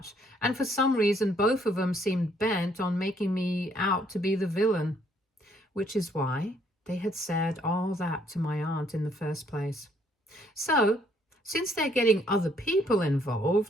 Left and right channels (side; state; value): both; normal; correlation 0.67